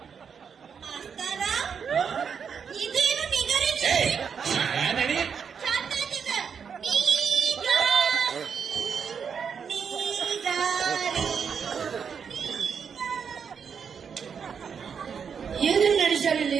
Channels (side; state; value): left; quieter; 6.7 dB